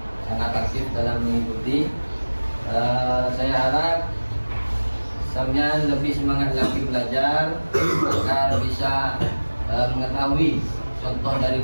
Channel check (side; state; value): both; inverted; correlation -1.00